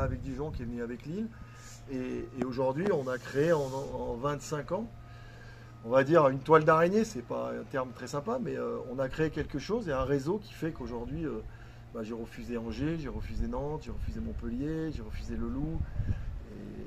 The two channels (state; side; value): identical; both; correlation 1.00